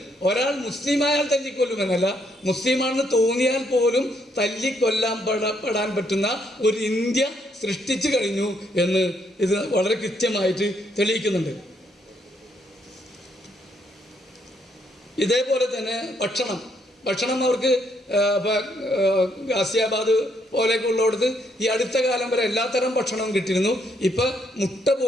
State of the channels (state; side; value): normal; both; correlation 0.73